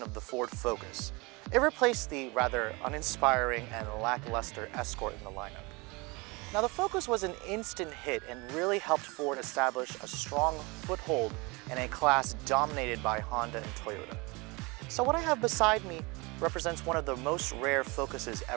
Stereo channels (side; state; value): left; quieter; 26.3 dB